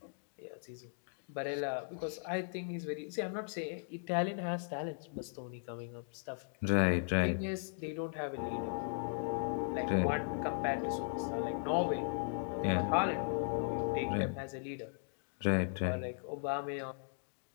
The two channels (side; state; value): right; silent; digital silence